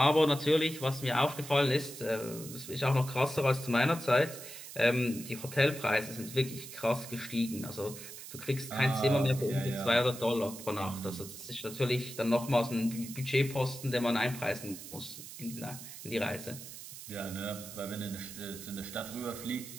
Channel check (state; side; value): noise; right; hiss, 12 dB below the sound